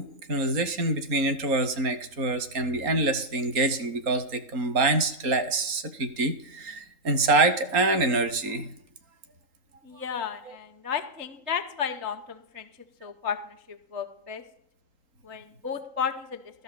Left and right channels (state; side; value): late; left; 3.8 ms